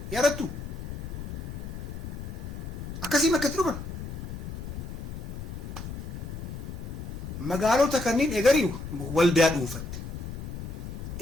يا رتو أكاسي ما كتروبن مقالو تكنين إجاري والداد أروفت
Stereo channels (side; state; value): left; noise; rumble, 7 dB below the sound